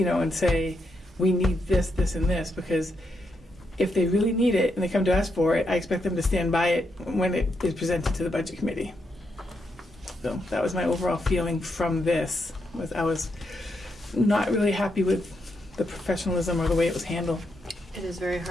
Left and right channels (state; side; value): normal; both; correlation 0.81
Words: know, and say, we need this, this, and this, because if they really need it and they come to us for it, I expect them to stand by it when it is presented to the budget committee. So that was my overall feeling from this, was I was not really happy with the professionalism or the way it was handled. It is very